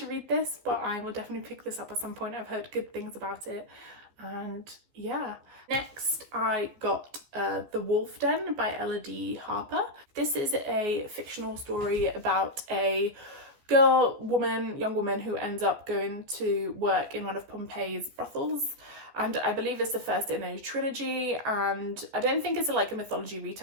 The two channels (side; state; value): left; late; 15 ms